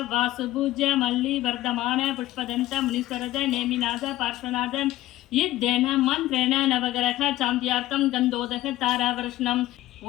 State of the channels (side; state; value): right; quieter; 15.6 dB